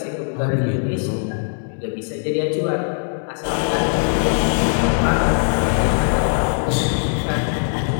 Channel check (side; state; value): right; silent; digital silence